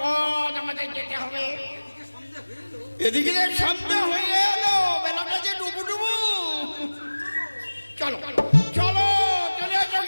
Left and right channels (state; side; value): inverted; both; correlation -1.00